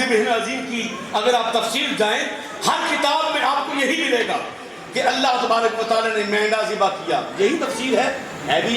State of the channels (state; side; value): identical; both; correlation 1.00